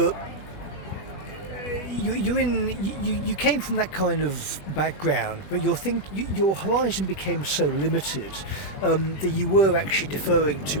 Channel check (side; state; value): right; late; 20 ms